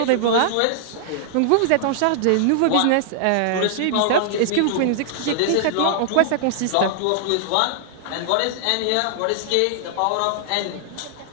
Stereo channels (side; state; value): both; different; correlation -0.01